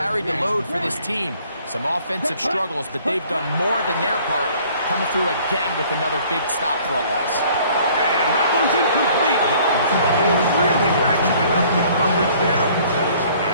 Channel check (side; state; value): both; inverted; correlation -0.56